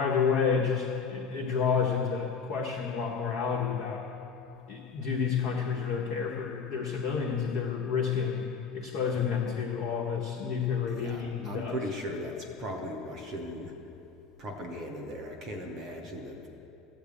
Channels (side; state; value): right; quieter; 5.5 dB